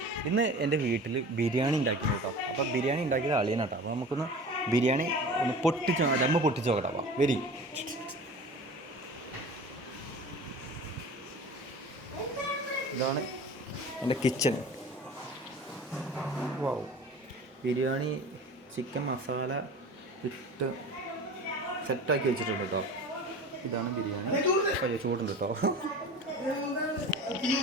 ഇന്ന് എൻ്റെ വീട്ടിൽ ബിരിയാണി ഉണ്ടാക്കിയിരുന്നു കേട്ടോ. അപ്പോൾ ബിരിയാണി ഉണ്ടാക്കിയത് അളിയനാട്ടോ. അപ്പോൾ നമുക്കൊന്ന് ബിരിയാണി ഒന്ന് ദമ്മ് പൊട്ടിച്ച് നോക്കട്ടോ. അപ്പോൾ വെരി ഇതാണ് എൻ്റെ കിച്ചൺ. വാവ്, ബിരിയാണി ചിക്കൻ മസാല ഇട്ട് സെറ്റാക്കി വെച്ചിട്ടുണ്ട് കേട്ടോ. ഇതാണ് ബിരിയാണി. അയ്യോ, ചൂടുണ്ട് കേട്ടോ.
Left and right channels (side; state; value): both; normal; correlation 0.38